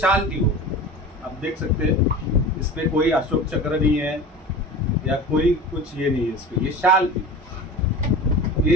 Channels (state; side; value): normal; both; correlation 0.35